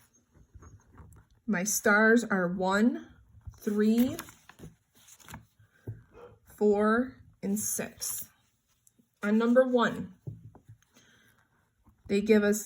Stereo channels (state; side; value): identical; both; correlation 1.00